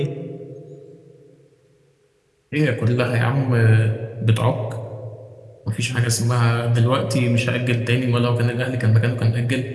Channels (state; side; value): identical; both; correlation 1.00